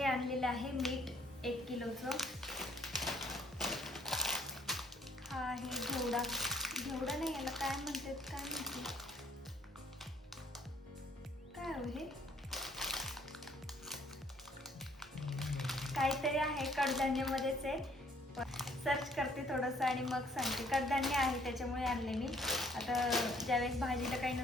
आणलेलं आहे मीठ 1 किलोचं. हा आहे घेवडा नाही, याला काय म्हणते काय हो हे काहीतरी आहे, कडधान्यामध्येच आहे. सर्च करते थोडंसं आणि मग सांगते. कडधान्य आहे त्याच्यामुळे आणले मी. आता ज्यावेळेस भाजीला काही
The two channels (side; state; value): both; normal; correlation 0.62